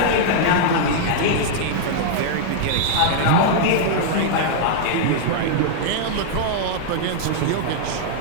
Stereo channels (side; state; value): both; different; correlation -0.01